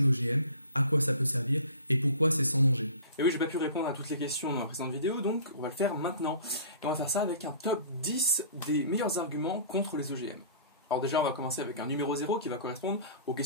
OGM, à quoi ça peut servir et pourquoi c'est sans danger. Et oui, j'ai pas pu répondre à toutes les questions dans la précédente vidéo, donc on va le faire maintenant. Et on va faire ça avec un top 10 des meilleurs arguments contre les OGM. Alors déjà, on va commencer avec un numéro 0 qui va correspondre aux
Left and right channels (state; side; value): inverted; both; correlation -0.44